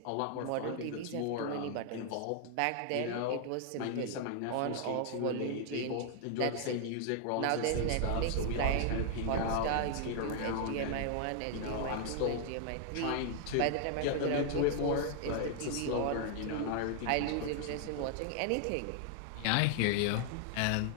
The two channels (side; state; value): both; different; correlation 0.00